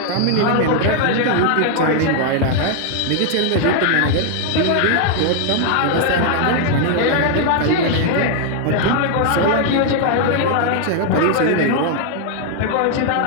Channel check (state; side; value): different; both; correlation 0.00